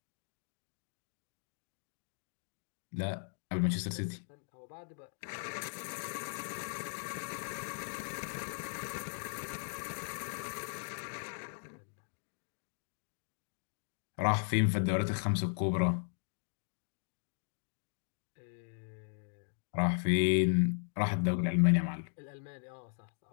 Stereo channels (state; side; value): silent; right; digital silence